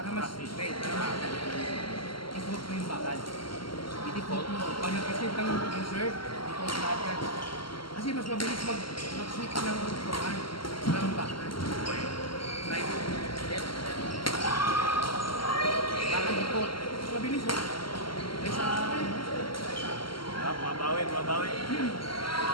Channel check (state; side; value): late; right; 0.74 ms